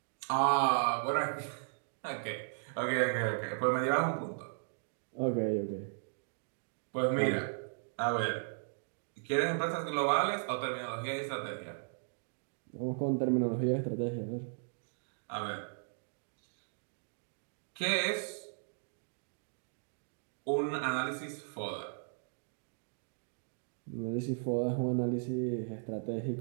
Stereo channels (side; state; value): left; silent; digital silence